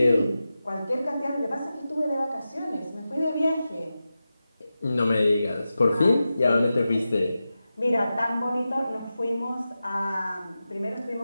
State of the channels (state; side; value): inverted; both; correlation -0.93